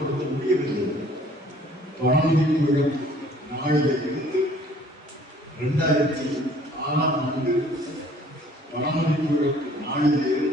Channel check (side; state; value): both; normal; correlation 0.56